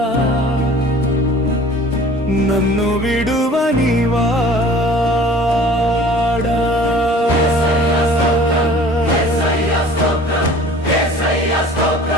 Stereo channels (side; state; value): both; normal; correlation 0.47